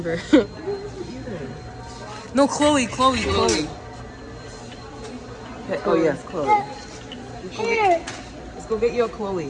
Either. No, Chloe. Okay, oh yes, Chloe. Here. Let's go get you a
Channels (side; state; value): both; identical; correlation 1.00